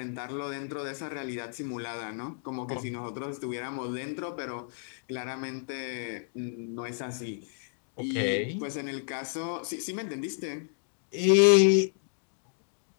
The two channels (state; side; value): silent; right; digital silence